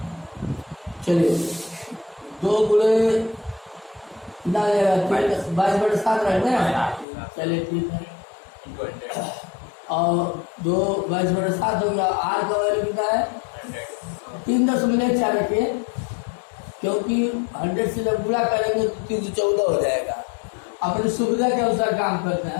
चलिए, 2 गुणे कितना रहेगा? 22/7 रहेगा। चलिए ठीक है, और 2 22/7 हो गया। आर का वैल्यू कितना है? 3.4 रखिए, क्योंकि 100 से जब गुणा करेंगे तो 314 हो जाएगा। अपनी सुविधा के अनुसार काम करते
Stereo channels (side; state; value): right; drops out; at 7.1 s